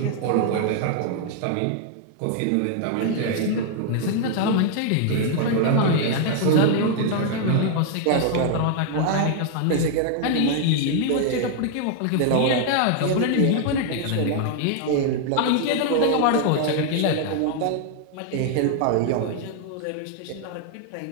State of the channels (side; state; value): both; different; correlation 0.00